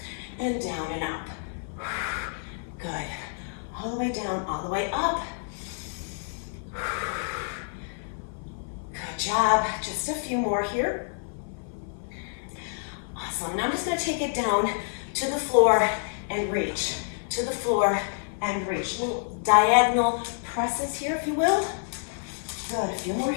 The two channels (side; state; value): right; silent; 59 dB below the other